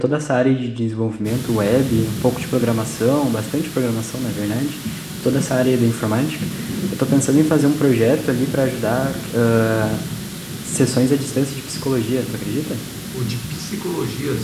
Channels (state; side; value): noise; left; hum, 29 dB below the sound